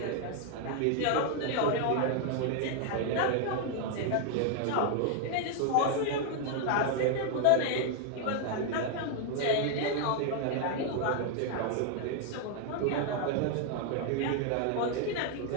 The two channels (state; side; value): different; both; correlation 0.01